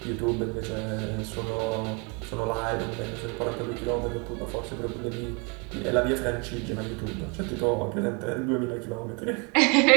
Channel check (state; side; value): quieter; left; 32.4 dB